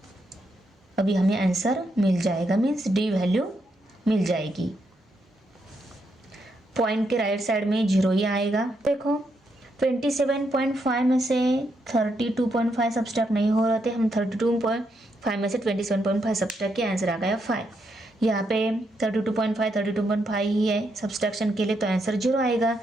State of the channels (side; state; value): both; normal; correlation 0.80